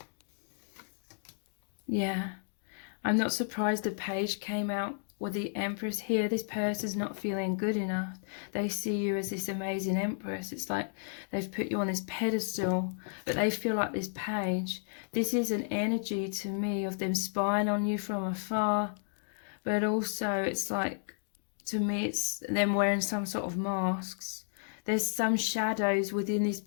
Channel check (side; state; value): right; silent; digital silence